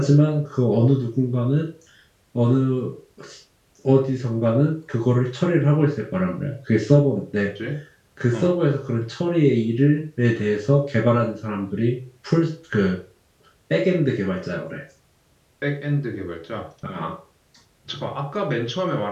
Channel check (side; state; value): both; identical; correlation 1.00